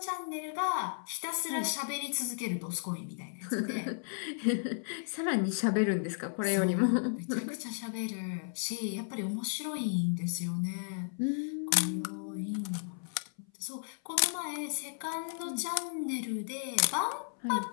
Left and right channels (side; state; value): right; silent; 55 dB below the other